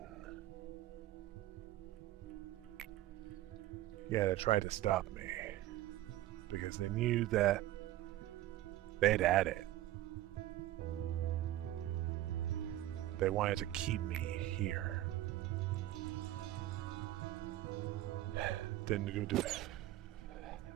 Yeah, they tried to stop me because they knew that they'd had it. They wanted to keep me here. Didn't do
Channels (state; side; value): quieter; left; 14.8 dB